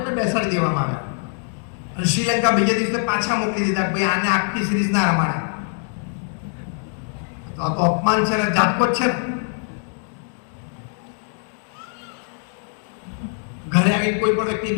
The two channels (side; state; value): right; silent; 57 dB below the other